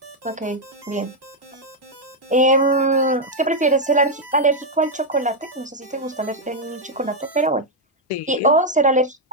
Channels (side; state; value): both; normal; correlation 0.00